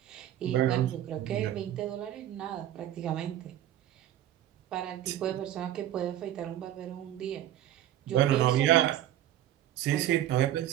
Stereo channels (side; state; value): left; quieter; 12.5 dB